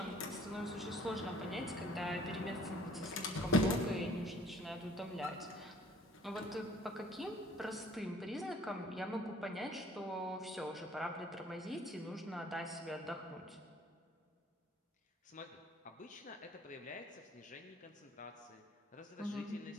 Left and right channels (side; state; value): both; normal; correlation 0.56